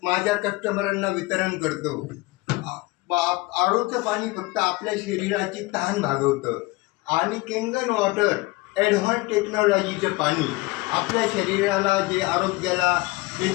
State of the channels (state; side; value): quieter; right; 22.2 dB